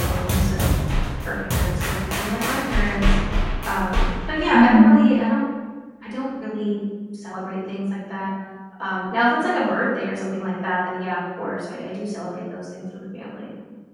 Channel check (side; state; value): both; identical; correlation 1.00